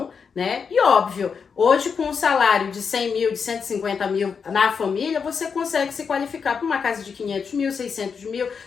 né? E óbvio, hoje com um salário de 100 mil, de 150 mil na família, você consegue se qualificar para uma casa de 500 mil, 600 mil,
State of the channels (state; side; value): quieter; right; 6.0 dB